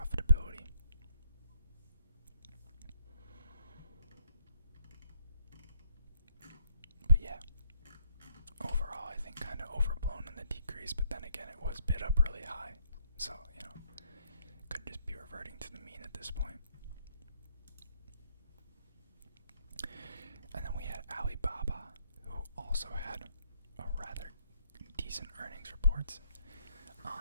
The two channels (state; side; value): inverted; both; correlation -0.74